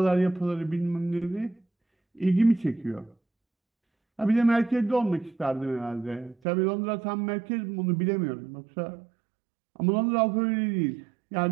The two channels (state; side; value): drops out; left; at 6.4 s